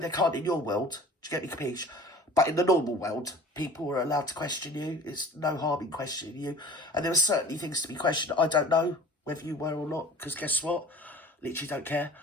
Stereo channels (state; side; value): normal; both; correlation 0.44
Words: can't in your world, do you get me, capiche? But in the normal world, people are allowed to question you. It's no harm in questioning you. And there were certainly things to be questioned. I don't know whether you were or not, because guess what? Literally don't care.